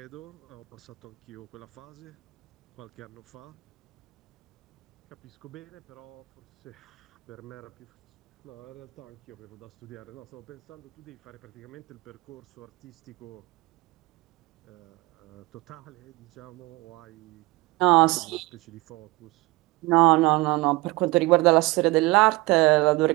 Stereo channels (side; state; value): left; quieter; 22.1 dB